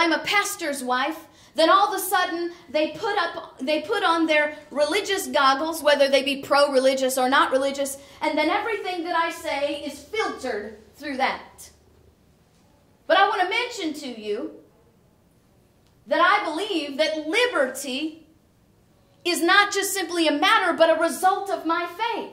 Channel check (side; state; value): both; identical; correlation 1.00